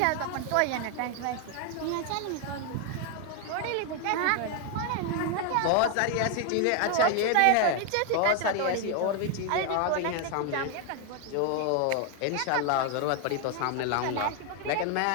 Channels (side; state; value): both; different; correlation 0.01